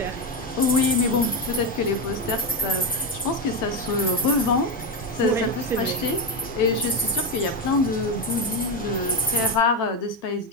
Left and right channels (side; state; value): both; normal; correlation 0.11